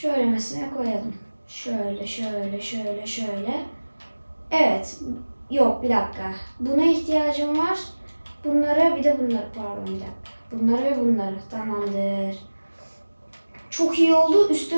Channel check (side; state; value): both; inverted; correlation -1.00